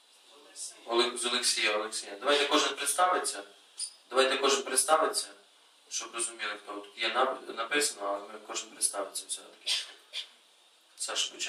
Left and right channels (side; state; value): both; identical; correlation 1.00